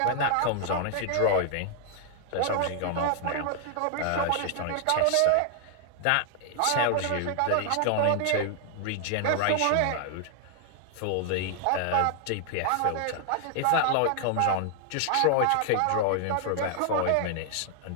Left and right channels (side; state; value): both; different; correlation 0.00